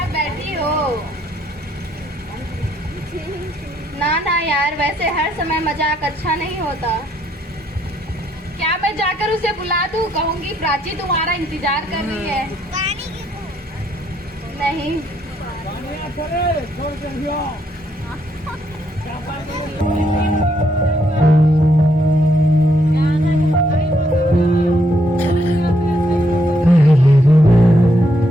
बैठी हो। ना यार, वैसे हर समय मजाक अच्छा नहीं होता। क्या मैं जाकर उसे बुला दूं? कहूंगी प्राची तुम्हारा इंतजार कर रही है। नहीं।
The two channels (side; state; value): both; normal; correlation 0.73